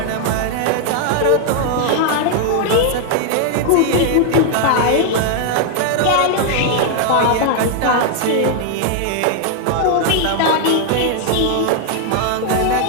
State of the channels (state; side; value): different; both; correlation 0.00